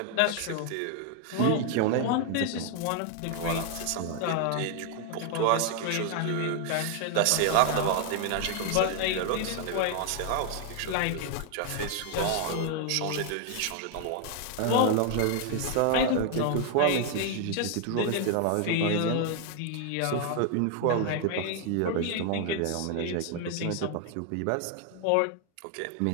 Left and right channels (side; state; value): both; different; correlation 0.00